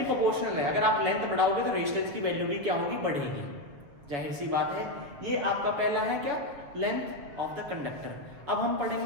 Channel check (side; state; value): left; late; 7.2 ms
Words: प्रोपोर्शनल है, अगर आप लेंथ बढ़ाओगे तो रेजिस्टेंस की वैल्यू भी क्या होगी, बढ़ेगी। जाहिर सी बात है। ये आपका पहला है क्या, लेंथ ऑफ द कंडक्टर। अब हम